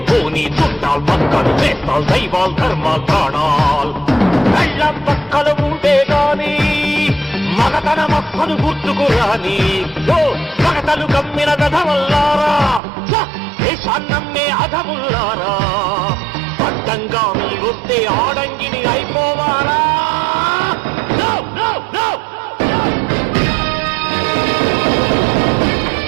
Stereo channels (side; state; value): left; drops out; at 12.8 s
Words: చుట్టాలు పక్కలు వేస్తాలు దైవాలు ధర్మాలు ప్రాణాలు కళ్ళం పక్కలు ఉంటే గాని మగతన మక్కలు గుర్తుకు రాని మగతలు కమ్మిన గధవల్లారా దేశాన్నమ్మే అధముల్లారా అడ్డంగా మీరొస్తే ఆడంగిని అయిపోవాలా